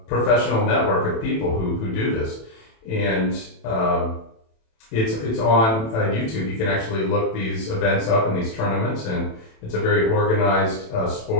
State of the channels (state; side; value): late; right; 27 ms